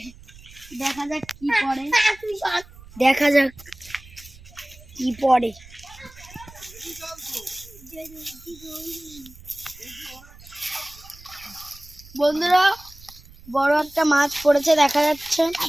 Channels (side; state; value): right; noise; rumble, 21 dB below the sound